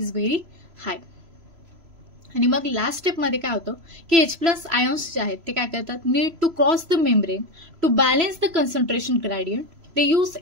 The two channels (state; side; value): late; left; 3.0 ms